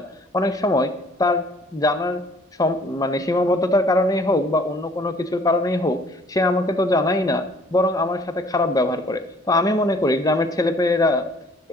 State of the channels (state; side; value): normal; both; correlation 0.57